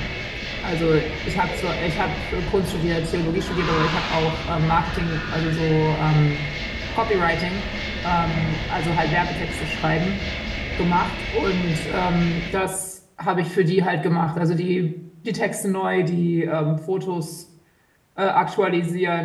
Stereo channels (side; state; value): both; identical; correlation 1.00